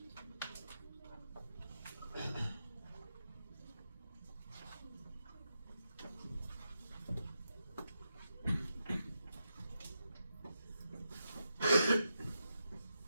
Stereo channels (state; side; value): inverted; both; correlation -0.86